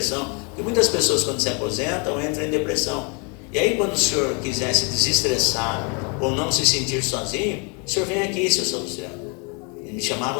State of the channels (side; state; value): right; quieter; 34.4 dB